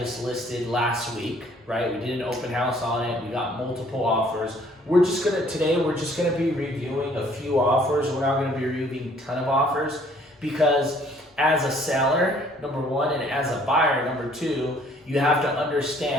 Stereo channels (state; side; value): normal; both; correlation 0.59